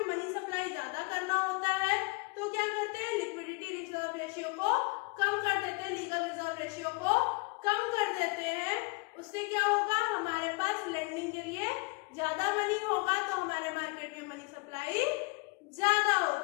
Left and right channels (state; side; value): quieter; right; 28.6 dB